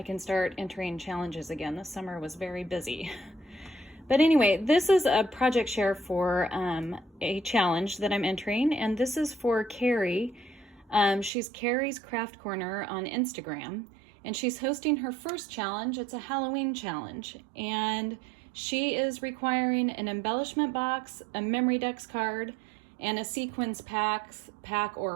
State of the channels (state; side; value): drops out; left; at 11.3 s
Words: can start entering challenges again. This summer was very busy. But anyway, this is a project share for a challenge that I'm entering, and this is for Kari. She's KarisKraftKorner on Instagram, and she's hosting her first challenge. It's a Halloween challenge, and she is requiring an embellishment box, a memory dex card, and a sequins pack